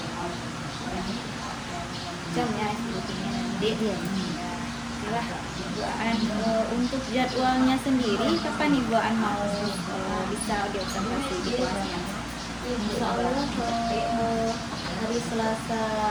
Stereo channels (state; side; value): identical; both; correlation 1.00